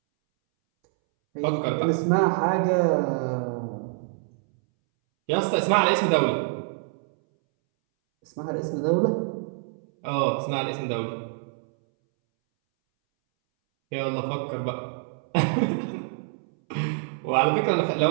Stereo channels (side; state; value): left; silent; 61 dB below the other